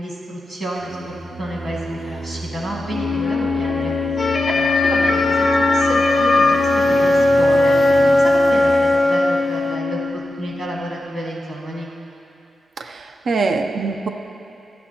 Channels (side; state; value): both; normal; correlation 0.90